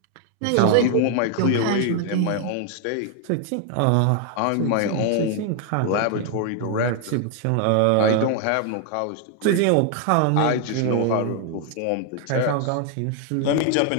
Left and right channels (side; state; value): both; different; correlation 0.00